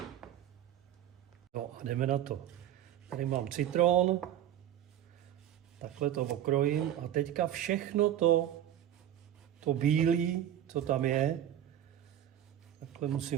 No a jdeme na to. Tady mám citron, takhle to okrojím a teďka všechno to bílé, co tam je, takhle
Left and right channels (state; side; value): quieter; left; 11.3 dB